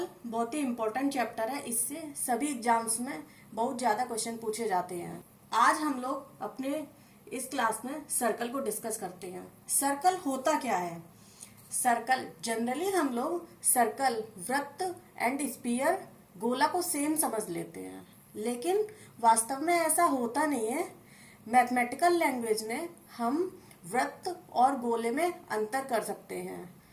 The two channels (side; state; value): both; identical; correlation 1.00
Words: बहुत ही इंपॉर्टेंट चैप्टर है, इससे सभी एग्जाम्स में बहुत ज्यादा क्वेश्चन पूछे जाते हैं। आज हम लोग अपने इस क्लास में सर्कल को डिस्कस करते हैं। सर्कल होता क्या है? सर्कल जनरली हम लोग सर्कल, वृत्त एंड स्फीयर, गोला को सेम समझ लेते हैं, लेकिन वास्तव में ऐसा होता नहीं है। मैथमेटिकल लैंग्वेज में हम वृत्त और गोले में अंतर कर सकते हैं।